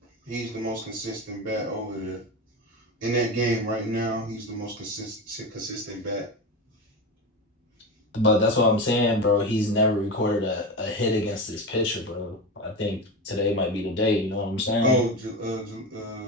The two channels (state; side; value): normal; both; correlation 0.22